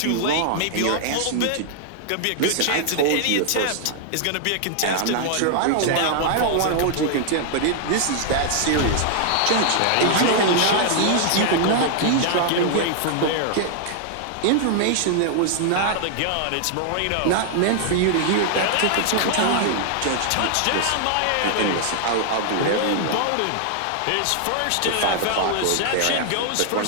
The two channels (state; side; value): different; both; correlation -0.01